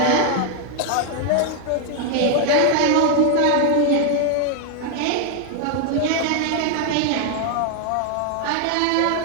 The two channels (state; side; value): different; both; correlation 0.01